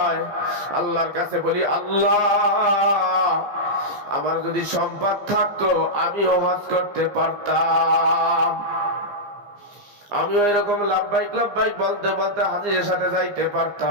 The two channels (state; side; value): late; left; 15 ms